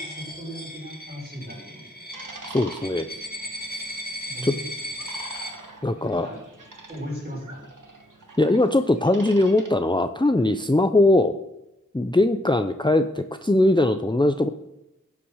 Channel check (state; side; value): normal; both; correlation 0.75